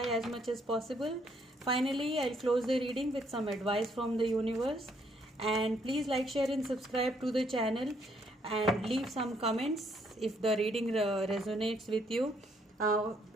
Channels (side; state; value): both; normal; correlation 0.70